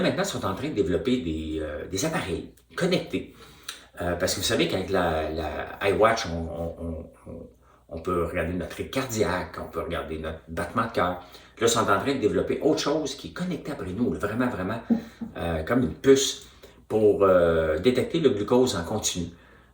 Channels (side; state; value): both; identical; correlation 1.00